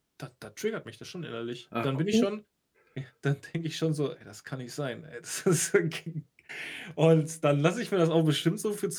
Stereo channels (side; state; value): both; identical; correlation 1.00